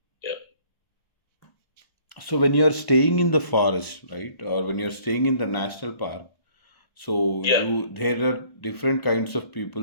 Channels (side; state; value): right; late; 1.3 ms